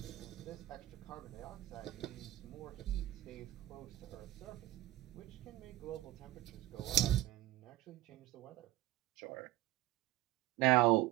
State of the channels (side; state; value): left; quieter; 16.1 dB